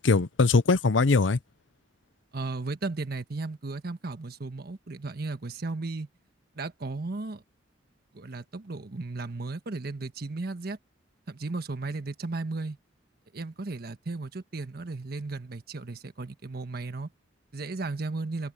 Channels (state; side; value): normal; both; correlation 0.50